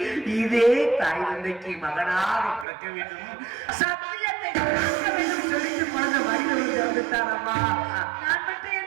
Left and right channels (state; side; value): drops out; left; at 2.7 s